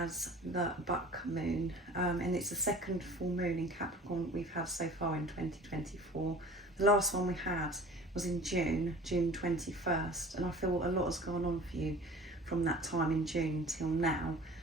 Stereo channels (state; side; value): normal; both; correlation 0.44